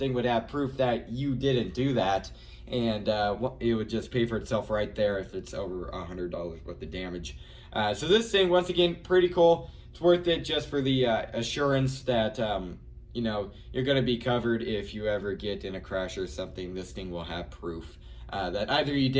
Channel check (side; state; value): both; identical; correlation 1.00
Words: would have proof that you didn't do that, and it would just pay for itself right there if it's over $100 worth of damage. So this thing, once again, pretty cool. It's worth it just for the assurance that you're going to be covered if you ever get in a crash or something. This thing will have proof that either you